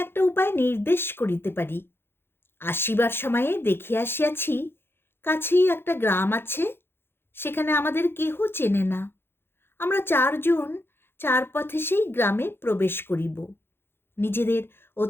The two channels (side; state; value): right; late; 0.11 ms